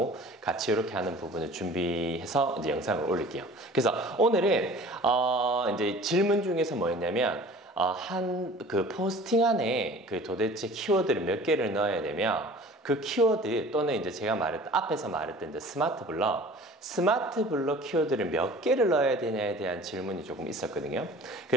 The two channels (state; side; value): normal; both; correlation 0.45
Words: 같이 이렇게 하는 부분을 준비해서 이제 영상을 올릴게요. 그래서 오늘은 이제 질문 중에서 뭐였냐면 한 그 포스팅 안에 그 도대체 키워드를 몇 개를 넣어야 되며 그 키워드 또는 이제 제가 앞에서 말했던 이제 스마트 블럭 키워드를 몇 개를 넣어야 되냐에 대한 질문이 조금 있었거든요.